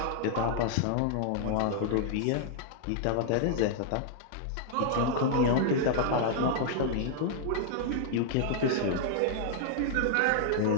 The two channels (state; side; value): different; both; correlation 0.00